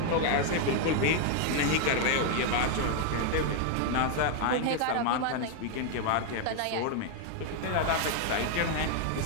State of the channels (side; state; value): both; different; correlation 0.00